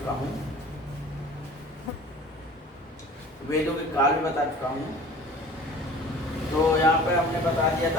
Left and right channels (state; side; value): normal; both; correlation 0.44